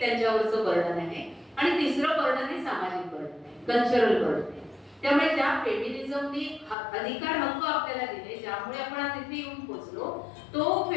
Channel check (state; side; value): drops out; right; at 6.8 s